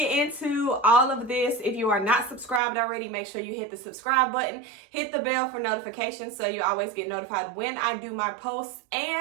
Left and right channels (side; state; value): left; drops out; at 2.6 s